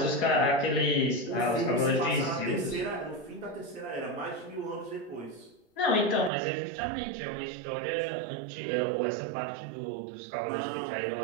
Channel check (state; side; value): drops out; left; at 6.3 s